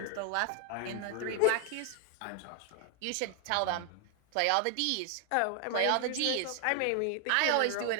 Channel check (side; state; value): both; different; correlation 0.00